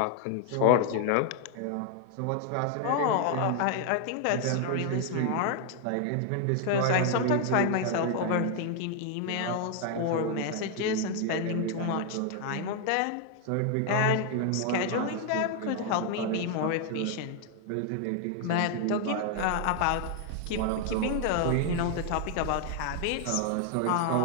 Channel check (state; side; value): different; both; correlation 0.00